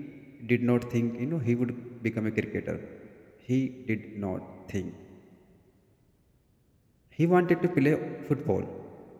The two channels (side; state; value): both; identical; correlation 1.00